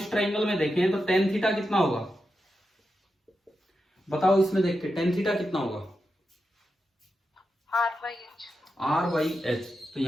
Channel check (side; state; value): both; normal; correlation 0.88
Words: देखें, तो टेन थीटा कितना होगा बताओ, इसमें देख के टेन थीटा कितना होगा, आर बाई एच। तो